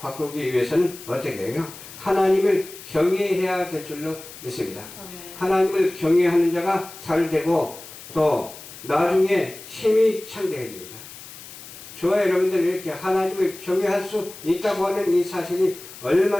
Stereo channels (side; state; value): left; noise; hiss, 16 dB below the sound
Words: 위해서는 어떻게 해요? 하나님을 경외해야 될 줄로 믿습니다. 하나님을 경외하는 자가 잘 되고 또 나중에 힘이 창대해집니다. 저와 여러분들이 이렇게 하나님을 경외할 수 있다고 하는 이 사실이